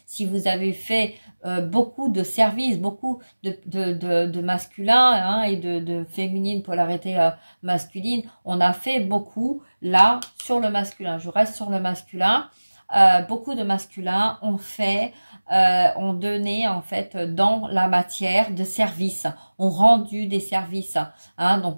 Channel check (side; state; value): both; inverted; correlation -1.00